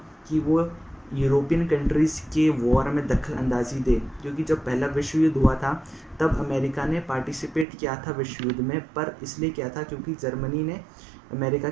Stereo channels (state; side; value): drops out; left; at 7.7 s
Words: कि वो यूरोपियन कंट्रीज़ के वॉर में दखल अंदाजी दे, क्योंकि जब पहला विश्व युद्ध हुआ था तब अमेरिका ने पार्टिसिपेट किया था विश्व युद्ध में, पर इसलिए किया था क्योंकि जर्मनी ने अमेरिका